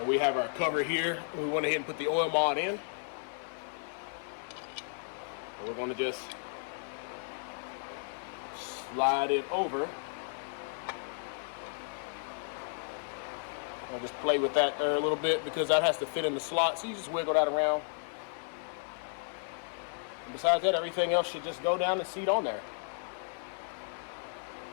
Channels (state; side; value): silent; right; 55 dB below the other